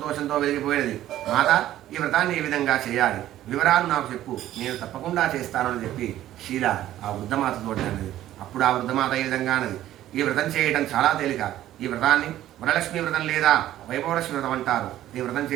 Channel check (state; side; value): quieter; left; 13.3 dB